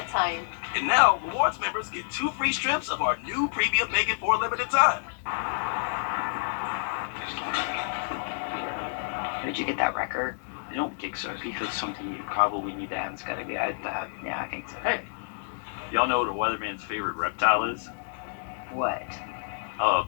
time. And now, rewards members get 2 free strips of our new premium bacon for a limited time. Did you get that record? I don't think so. Because something you probably need to have. It's got to be that. Yeah, I think so. Hey, y'all know what a weatherman's favorite reptile is? What? A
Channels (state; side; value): silent; right; digital silence